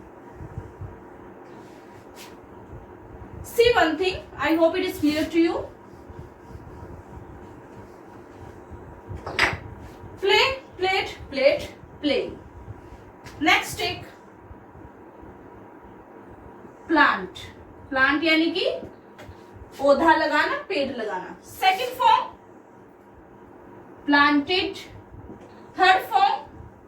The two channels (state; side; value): identical; both; correlation 1.00